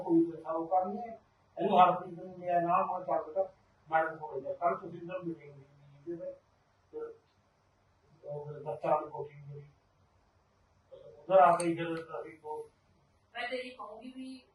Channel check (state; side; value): identical; both; correlation 1.00